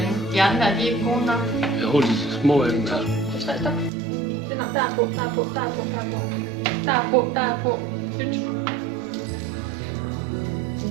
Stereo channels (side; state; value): left; drops out; at 3.9 s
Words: De andre, de er ikke gode nok. Jeg holder de små af dem her. 2, 3, stop. Det er nok. Der er på. Nyt.